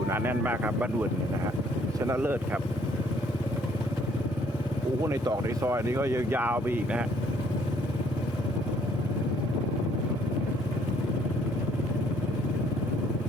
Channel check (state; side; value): normal; both; correlation 0.63